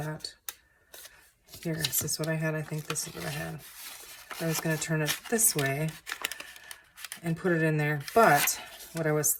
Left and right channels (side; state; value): both; identical; correlation 1.00